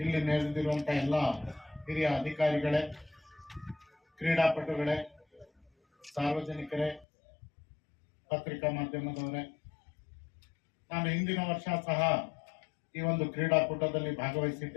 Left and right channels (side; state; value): right; drops out; at 7.1 s